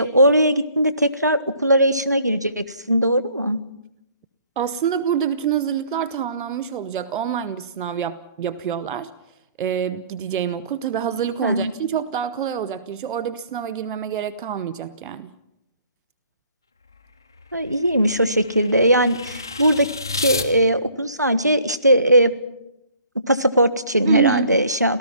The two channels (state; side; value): inverted; both; correlation -0.58